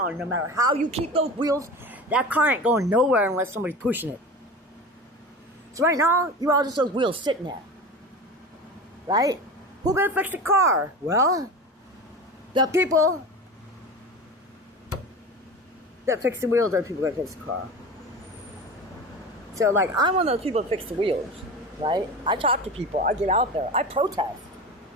No matter how you keep those wheels, that car ain't going nowhere unless somebody's pushing it. So right now, you're all just those wheels sitting there. Right? Who's gonna fix the car? Well, the people that fix the wheels are the people that fix the car. So, I'm one of those people that fix the wheels, right? I talk to people. I get out there. I protest.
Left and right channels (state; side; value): normal; both; correlation 0.31